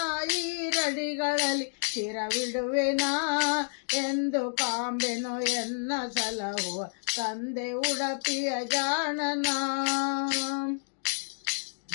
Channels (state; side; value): silent; right; digital silence